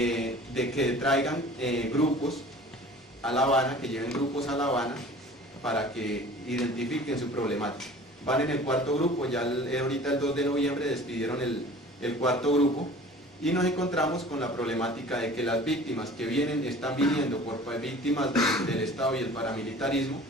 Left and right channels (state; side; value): normal; both; correlation 0.44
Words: que traigan grupos a La Habana, que lleven grupos a La Habana para que identifiquen su problemática. Van en el 4.º grupo, ya ahorita el 2 de noviembre despidieron el 4.º grupo, y nos encontramos con la problemática de que las víctimas que están viniendo por víctimas del Estado y el paramilitarismo,